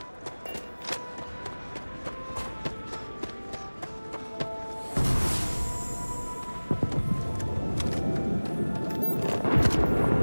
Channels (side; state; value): both; inverted; correlation -1.00